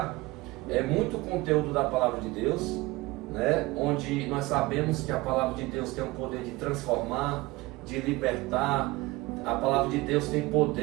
é muito conteúdo da palavra de Deus, né? Onde nós sabemos que a palavra de Deus tem o poder de transformar, de libertar. A palavra de Deus tem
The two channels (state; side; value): quieter; left; 21.2 dB